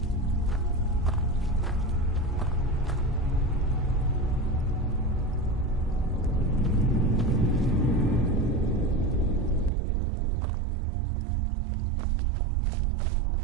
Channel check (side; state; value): left; drops out; at 9.7 s